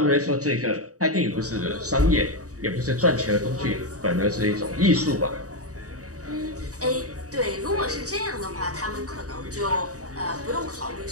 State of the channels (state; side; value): late; left; 0.66 ms